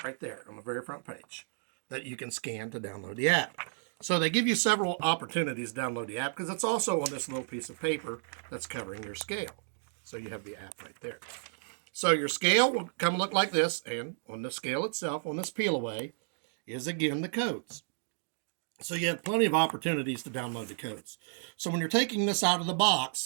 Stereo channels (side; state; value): left; silent; digital silence